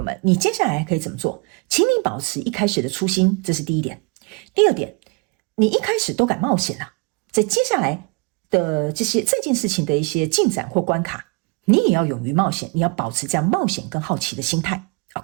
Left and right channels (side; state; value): left; quieter; 31.1 dB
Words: 们，你接下来可以怎么做？请你保持一开始的初心，这是第一点。第二点，你一开始都敢冒险了，在接下来的这件事情的一些进展或关卡，你也要勇于冒险，你要保持这样冒险跟好奇的心态。